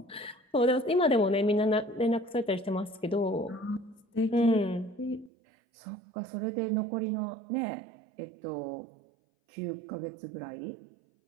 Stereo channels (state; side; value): drops out; left; at 5.3 s